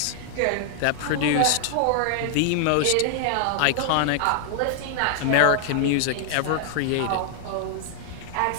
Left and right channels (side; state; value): both; different; correlation 0.00